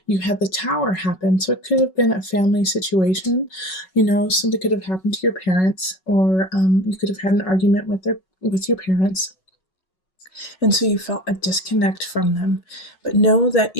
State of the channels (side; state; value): right; late; 5.4 ms